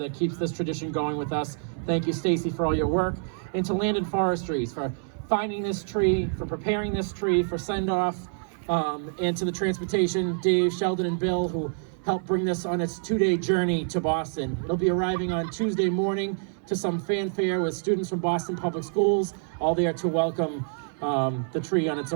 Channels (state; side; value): silent; left; 60 dB below the other